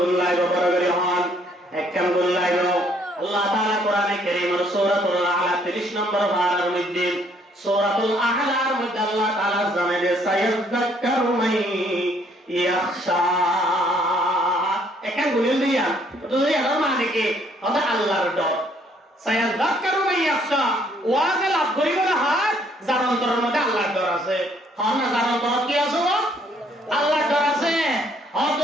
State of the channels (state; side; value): normal; both; correlation 0.65